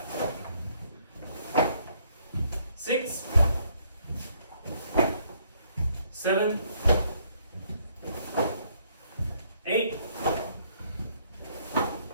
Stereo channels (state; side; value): inverted; both; correlation -0.68